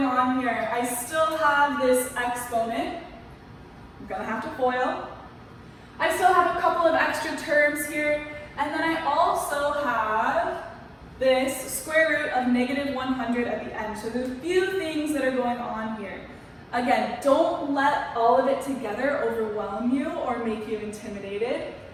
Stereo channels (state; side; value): identical; both; correlation 1.00